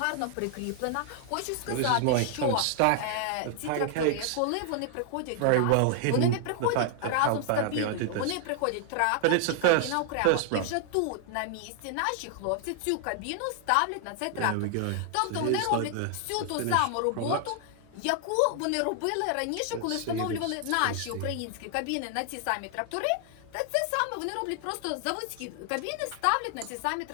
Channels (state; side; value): different; both; correlation 0.00